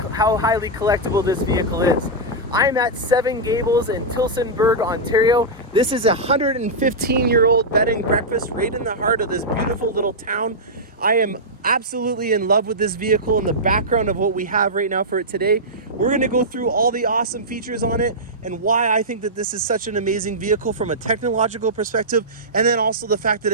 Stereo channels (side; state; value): both; normal; correlation -0.10